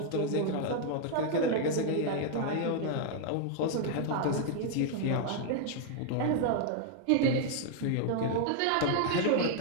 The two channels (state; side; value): different; both; correlation 0.00